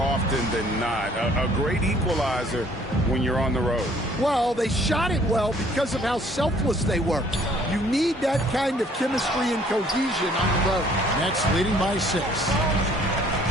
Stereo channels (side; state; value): both; normal; correlation 0.59